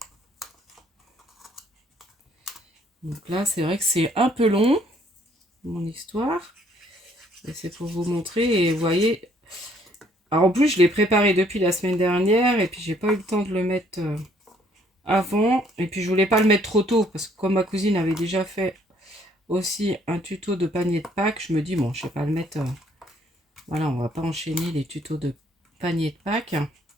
Donc là, c'est vrai que c'est un peu long, mon histoire. Et c'est pour vous montrer. Et vous voyez, alors en plus, je l'ai préparé depuis la semaine dernière. Et puis, j'ai pas eu le temps de le mettre avant. Et puis, je voulais pas le mettre trop tôt. Parce que comme ma cousine avait déjà fait aussi un tuto de panier de Pâques, je me dis, bon, je vais pas le mettre... voilà, on va pas enchaîner les tutos de panier de Pâques.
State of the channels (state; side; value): normal; both; correlation 0.64